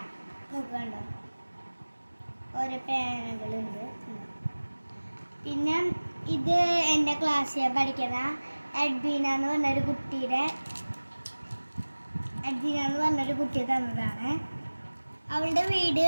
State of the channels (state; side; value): inverted; both; correlation -1.00